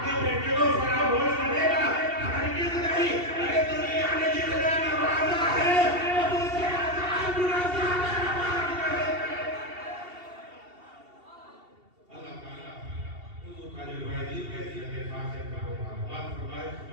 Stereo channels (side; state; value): left; late; 2.7 ms